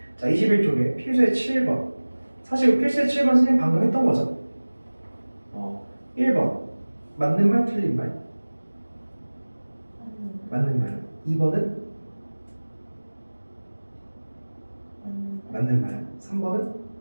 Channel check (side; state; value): both; inverted; correlation -1.00